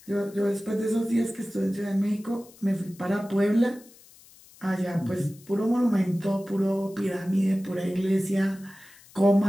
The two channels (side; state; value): left; noise; hiss, 24 dB below the sound